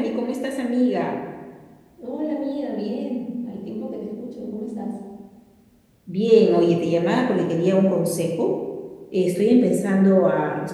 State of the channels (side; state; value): both; identical; correlation 1.00